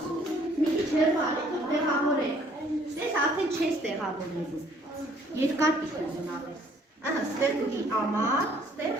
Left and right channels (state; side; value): normal; both; correlation 0.61